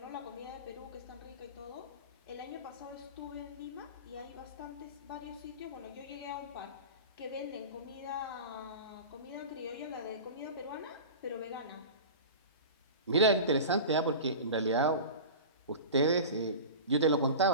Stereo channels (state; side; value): inverted; both; correlation -0.33